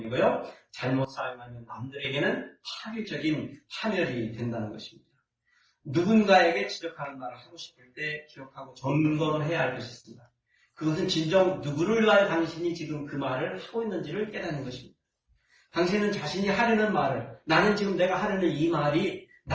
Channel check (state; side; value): identical; both; correlation 1.00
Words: 잘못 사용하면 남들에게는 파괴적인 파멸이 된다는 것입니다. 누군가에게 지적하는 말을 하고 싶을 때 기억하고 점검을 해야 할 것이 있습니다. 그것은 진정 누구를 위하여 당신이 지금 그 말을 하고 있는지를 깨닫는 것입니다. 당신은 자신이 하려는 말을, 나는 지금 내가 하려는 이 말이